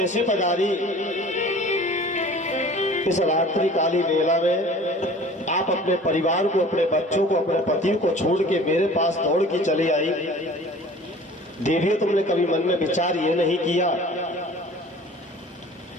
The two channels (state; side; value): normal; both; correlation 0.45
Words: पधारी? इस रात्रि काली वेला में आप अपने परिवार को, अपने बच्चों को, अपने पति को छोड़ के मेरे पास दौड़ के चली आई। देवियों, तुमने कभी मन में विचार ये नहीं किया